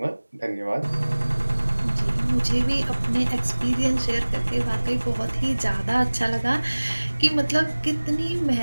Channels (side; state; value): both; inverted; correlation -1.00